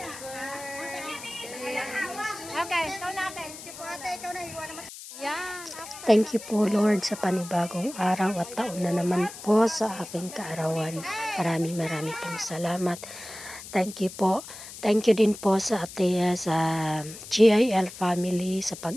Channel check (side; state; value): left; noise; hiss, 13 dB below the sound